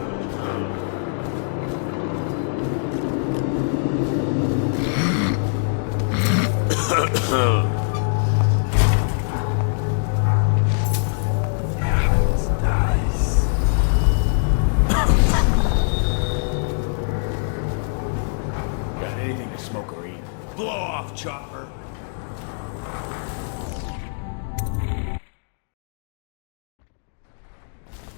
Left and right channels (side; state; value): right; silent; digital silence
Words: Got anything to smoke or eat? Blow off, Chopper!